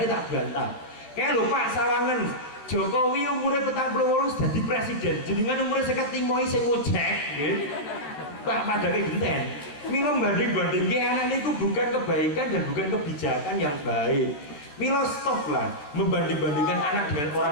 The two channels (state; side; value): late; right; 14 ms